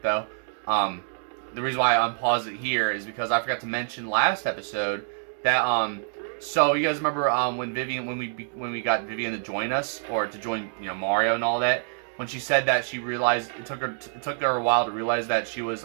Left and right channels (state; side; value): silent; left; 61 dB below the other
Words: The reason why I unpaused it here is because I forgot to mention last episode that, so you guys remember, when we got Vivian to join us, or to join, you know, Mario and all that, when she said that she realized it took her a while to realize that she was